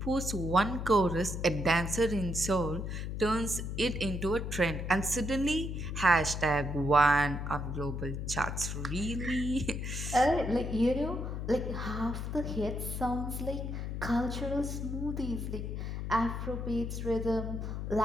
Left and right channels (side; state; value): left; noise; hum, 4 dB below the sound